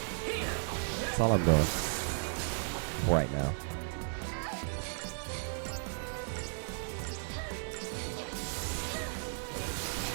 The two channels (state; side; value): silent; left; digital silence